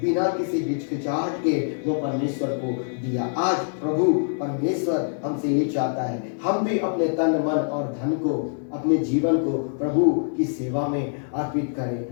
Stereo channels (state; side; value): silent; right; 62 dB below the other